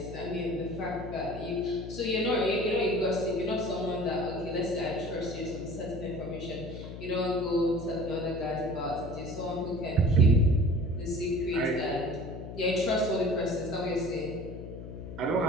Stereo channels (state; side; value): noise; left; hum, 10 dB below the sound